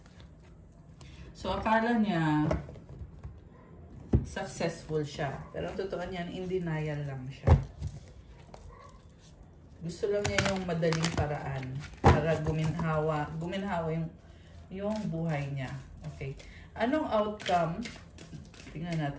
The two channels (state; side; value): identical; both; correlation 1.00